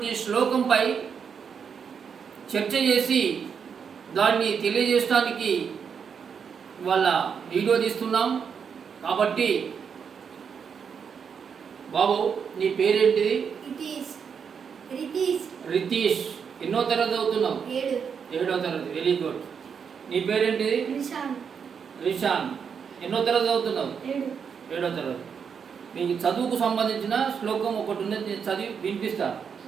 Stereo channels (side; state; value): left; quieter; 6.7 dB